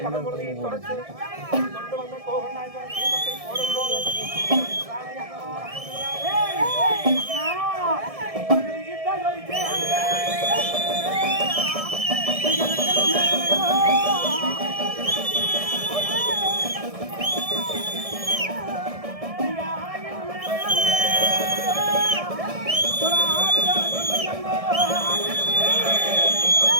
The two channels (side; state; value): left; late; 1.7 ms